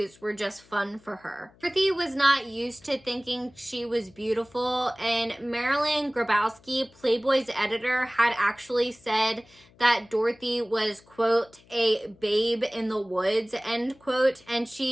were just fun for her. Dorothy was not used to thinking she was beautiful, and Marilyn Grabowski, Playboy's editor, had actually said that Dorothy was, quote, a babe in the woods, end quote, and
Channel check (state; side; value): noise; left; hum, 28 dB below the sound